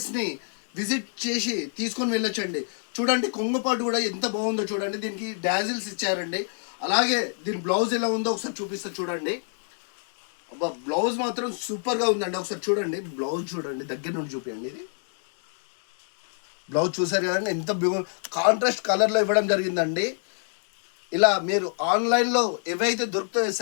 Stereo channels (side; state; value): right; silent; 57 dB below the other